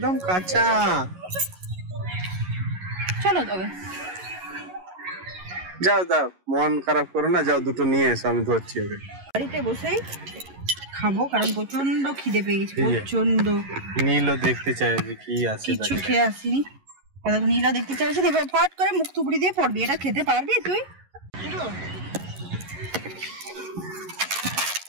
কাঁচা। চলো তবে যাও যাও, মন খারাপ করো না, যাও দুটো নিয়ে এসো, আমি ধরছি ওকে। বাড়িতে বসেই খাবো কারণ প্রচন্ড খিদে পেয়ে গেছে, প্রচন্ড। নীলও দেখতে চাই যে কি আছে, কিছু খেয়ে আসিনি, নীলা দেখতে চাইছি। এবার ফট করে মুখ থুবড়ি দিয়ে পড়বি। এটা খেতে পারবি তুই?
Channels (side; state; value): left; late; 11 ms